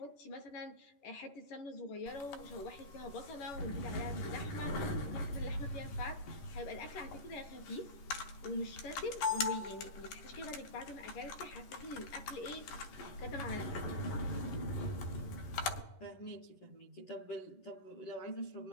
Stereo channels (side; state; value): right; late; 11 ms